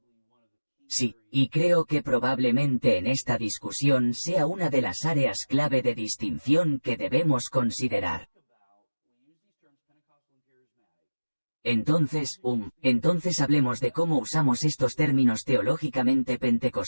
Sí, y creo que probablemente en esta discusión sea una de las áreas clave de distinción que debemos considerar. Entonces hablemos de cómo usamos estos términos teológicamente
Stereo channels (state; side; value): inverted; both; correlation -1.00